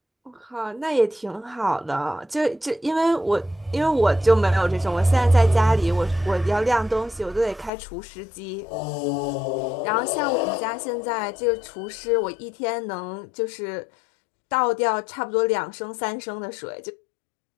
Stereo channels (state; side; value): drops out; right; at 7.7 s